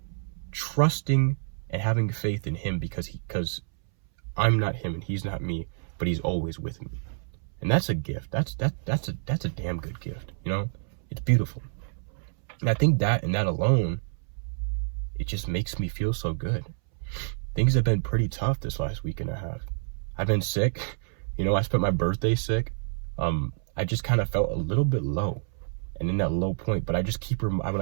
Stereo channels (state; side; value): silent; left; 59 dB below the other